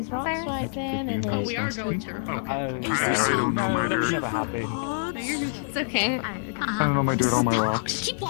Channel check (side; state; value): right; silent; digital silence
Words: those rocks right then. And oh, we are going to. I don't know my dirt. It's okay. I don't know my dirt on my rocks. Keep